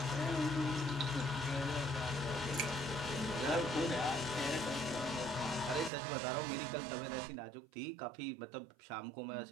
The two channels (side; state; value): left; drops out; at 5.9 s